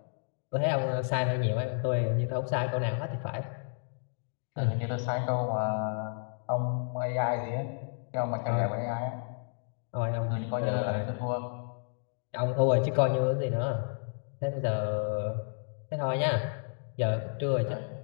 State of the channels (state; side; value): silent; right; digital silence